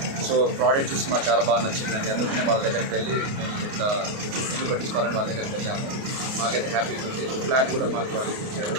సో ప్రోడక్ట్ చూసి మాకు చాలా బాగా నచ్చిందండి. అందుకనే వాళ్ళ దగ్గరికి వెళ్ళి ఇట్లా ఇల్లు కట్టించుకోవాలని వాళ్ళ దగ్గరికి వెళ్ళాము. మాకైతే హ్యాపీగా ఉంది. ఫ్లాట్ కూడా మాకు వాళ్ళు ఇచ్చారు.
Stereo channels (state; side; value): late; left; 29 ms